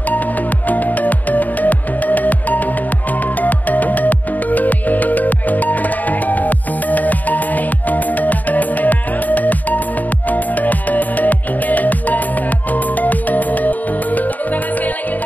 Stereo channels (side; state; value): right; late; 0.081 ms